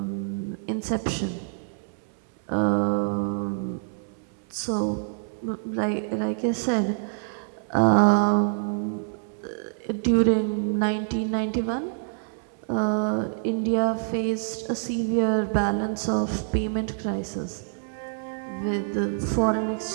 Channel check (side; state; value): left; silent; 61 dB below the other